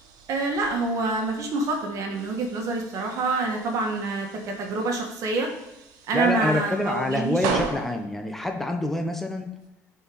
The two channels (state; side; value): normal; both; correlation 0.50